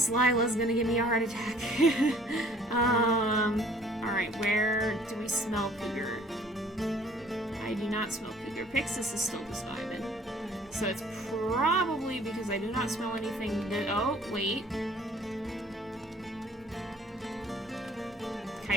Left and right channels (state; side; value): normal; both; correlation 0.55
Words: Lila's gonna give me a heart attack. Alright, where do we smell cougar? I do not smell cougar. Pixis is still just vibing. So it's probably because I do not smell anything that... Oh, wait.